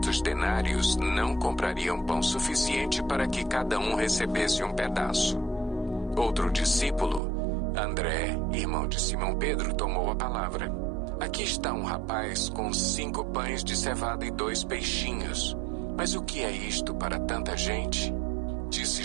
denários não comprariam pão suficiente para que cada um recebesse um pedaço. Outro discípulo, André, irmão de Simão Pedro, tomou a palavra. "Aqui está um rapaz com 5 pães de cevada e 2 peixinhos. Mas o que é isto para tanta gente?" Disse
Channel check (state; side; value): drops out; left; at 7.2 s